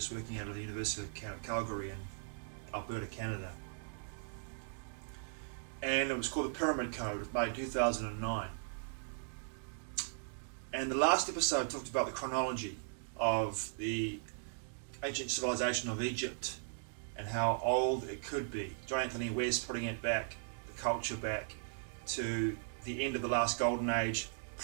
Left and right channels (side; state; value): left; silent; digital silence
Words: working out of the University of Calgary in Alberta, Canada. And it was called The Pyramid Code. It was made in 2009. And the last episode talked about the chronology of the ancient civilization of Egypt and how old it could be. John Anthony West putting it back, the culture back, to the end of the last golden age,